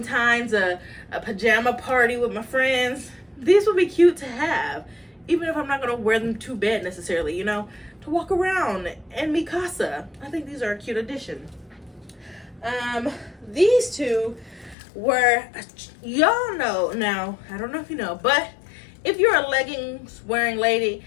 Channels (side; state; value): right; drops out; at 14.8 s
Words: a pajama party with my friends. These would be cute to have, even if I'm not gonna wear them to bed necessarily, you know, to walk around and mi casa. I think these are a cute addition. These two were, y'all know now, I don't know if you know, but if you're a leggings wearing lady,